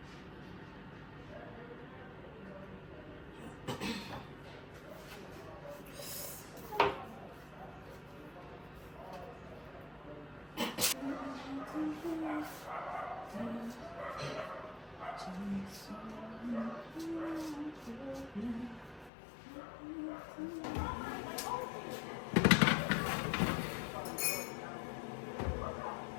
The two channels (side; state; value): right; drops out; at 19.1 s